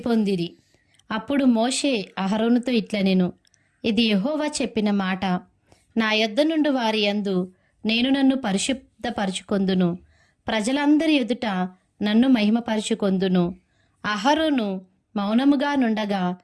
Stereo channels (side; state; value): both; identical; correlation 1.00